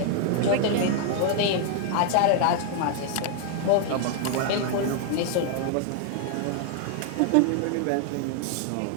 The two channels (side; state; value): both; different; correlation 0.00